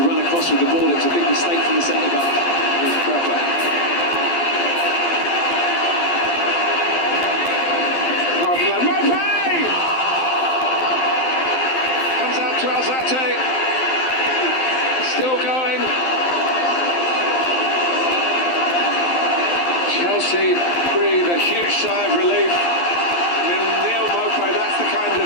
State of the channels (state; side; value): late; right; 12 ms